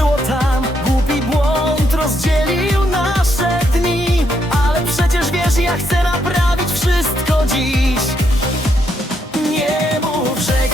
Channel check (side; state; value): both; normal; correlation 0.77